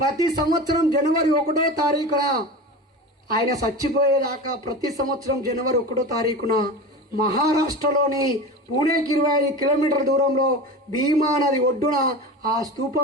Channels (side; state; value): both; normal; correlation 0.29